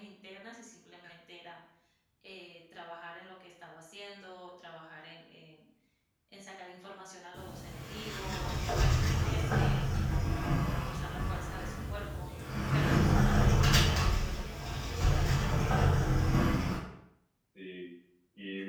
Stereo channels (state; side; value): identical; both; correlation 1.00